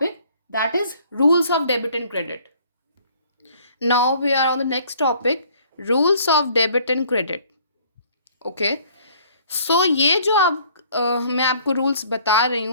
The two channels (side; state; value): both; inverted; correlation -0.57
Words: that is rules of debit and credit. Now we are on the next topic, rules of debit and credit. Okay, so ये जो मैं आपको rules बता रही